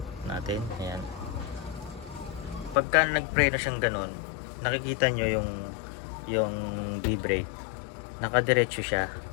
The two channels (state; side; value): drops out; right; at 2.8 s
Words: natin. Ayan. Pagka nagpreno siyang ganun, nakikita nyo yung B-brake. Nakadiretso siya.